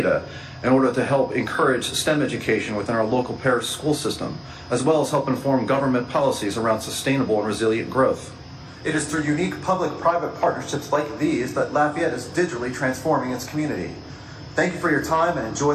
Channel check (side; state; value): both; identical; correlation 1.00